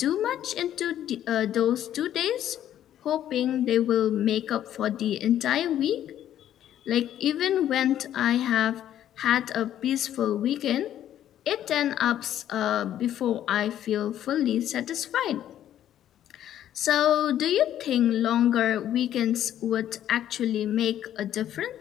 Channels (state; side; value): quieter; right; 11.3 dB